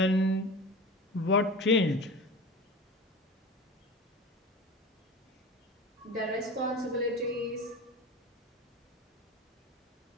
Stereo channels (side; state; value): both; normal; correlation 0.32